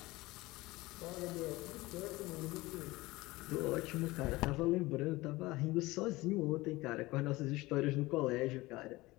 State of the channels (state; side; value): quieter; right; 20.4 dB